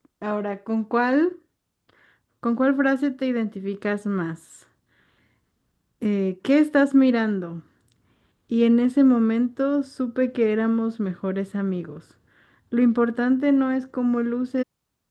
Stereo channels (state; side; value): identical; both; correlation 1.00